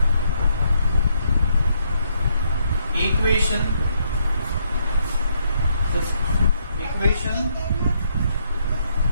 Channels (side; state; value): both; inverted; correlation -0.74